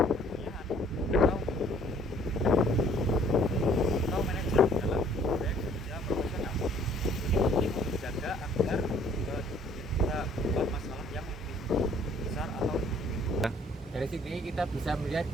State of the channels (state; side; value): normal; both; correlation 0.58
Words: atau kita bisa melihat